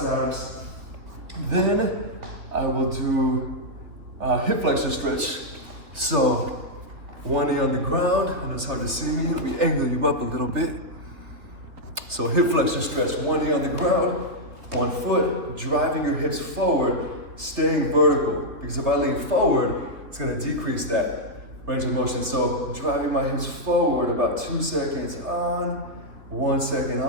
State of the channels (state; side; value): late; left; 3.5 ms